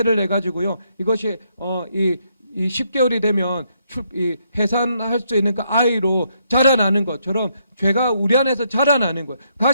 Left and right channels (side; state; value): both; inverted; correlation -0.74